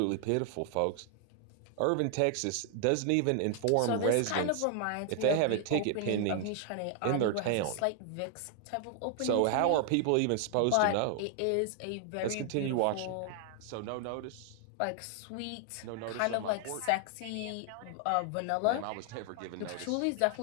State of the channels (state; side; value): different; both; correlation 0.00